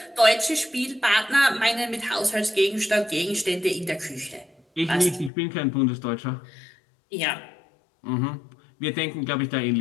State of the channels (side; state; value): right; drops out; at 5.3 s